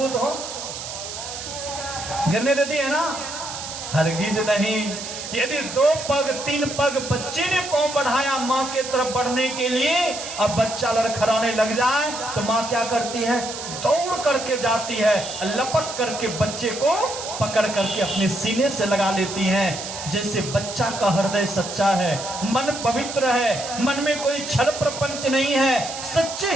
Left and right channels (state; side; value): noise; right; hiss, 8 dB below the sound